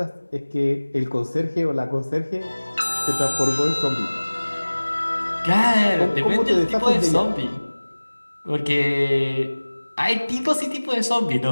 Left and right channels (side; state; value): both; inverted; correlation -1.00